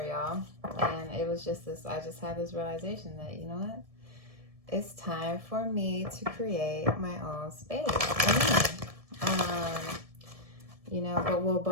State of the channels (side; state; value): left; late; 1.7 ms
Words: y'all. And it was just this, I just had this realization that, you know what? It's time for me to create my own space. But